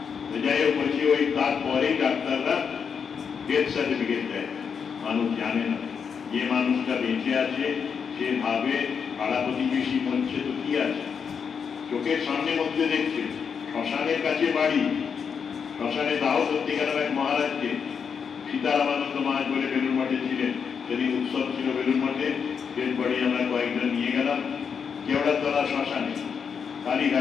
যাই হোক বলছি, ওই তারপরেই ডাক্তাররা ডেথ সার্টিফিকেট দেয়, মানুষ জানে না। যে মানুষটা বেঁচে আছে সে ভাবে পাড়া প্রতিবেশী মরছে তো কি আছে, চোখের সামনে মধ্যে দেখছে, শ্মশানের কাছে বাড়ি, শ্মশানে দাহ সত্যিকার এক মহারাজকে, সীতারামানন্দ মহারাজ বলে বেলুর মঠে ছিলেন, সেদিন উৎসব ছিল বেলুর মঠে, ডেড বডি আমরা কয়েকজন নিয়ে গেলাম কেওড়াতলা শ্মশানে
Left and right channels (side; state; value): right; quieter; 6.5 dB